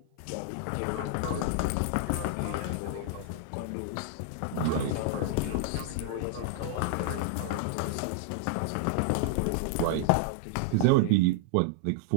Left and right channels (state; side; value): different; both; correlation -0.01